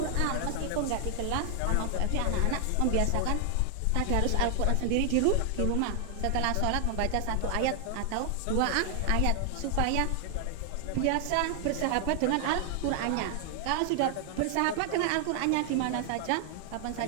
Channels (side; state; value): both; different; correlation 0.00